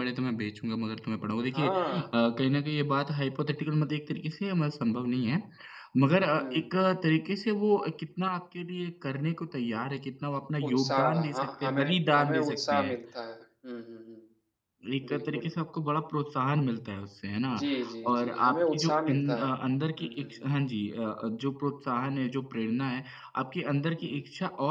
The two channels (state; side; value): identical; both; correlation 1.00